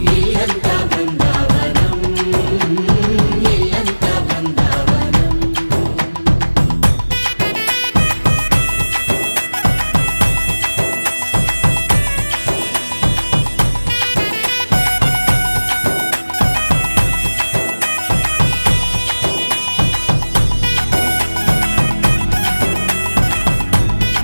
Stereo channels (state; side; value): inverted; both; correlation -1.00